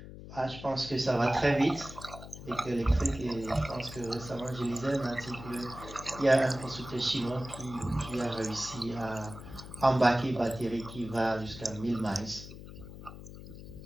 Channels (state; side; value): noise; left; hum, 13 dB below the sound